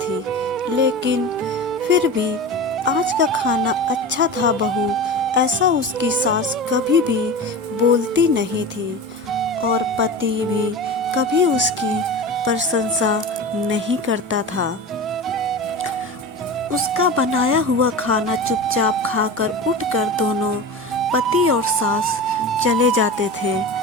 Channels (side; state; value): both; normal; correlation 0.29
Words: लेकिन फिर भी आज का खाना अच्छा था बहू, ऐसा उसकी सास कभी भी बोलती नहीं थी। और पति भी कभी उसकी प्रशंसा नहीं करता था। उसका बनाया हुआ खाना चुपचाप खाकर उठकर दोनों पति और सास चले जाते थे।